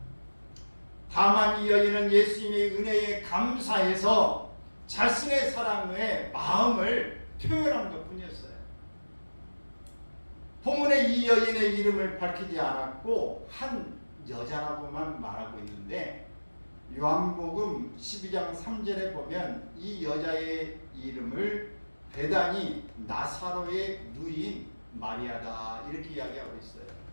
다만 이 여인은 예수님의 은혜에 감사해서 자신의 사랑의 마음을 표현한 것뿐이었어요. 본문에 이 여인의 이름을 밝히지 않았고 한 여자라고만 말하고 있는데 요한복음 12장 3절에 보면 이 여자의 이름을 베다니 나사로의 누이인 마리아다 이렇게 이야기하고 있어요.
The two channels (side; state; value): both; inverted; correlation -1.00